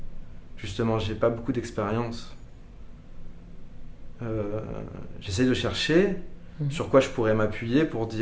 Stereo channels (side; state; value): both; identical; correlation 1.00